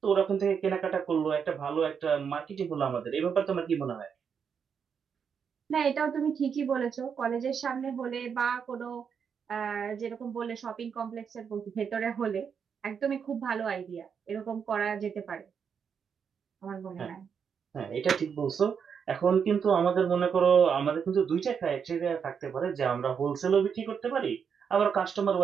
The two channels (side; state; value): left; quieter; 6.9 dB